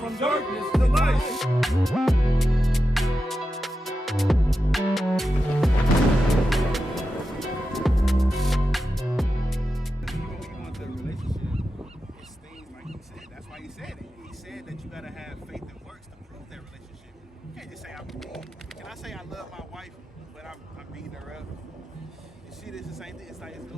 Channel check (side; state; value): both; normal; correlation 0.90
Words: darkness to light. That's why he said it. He said that you gotta have faith and works to prove that relationship. You can't just say I believe. Can I say I love my wife, but I'm beating her up? You see, this is the same thing. It's like it's